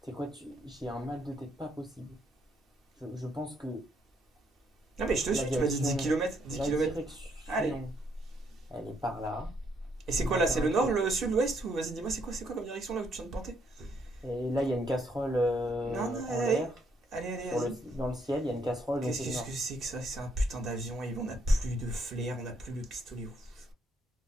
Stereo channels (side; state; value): both; normal; correlation 0.72